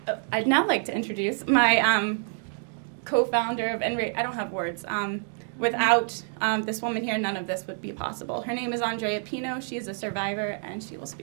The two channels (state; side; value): silent; left; 60 dB below the other